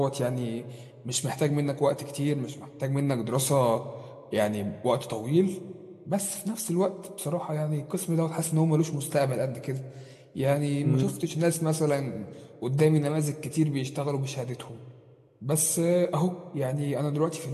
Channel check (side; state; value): both; identical; correlation 1.00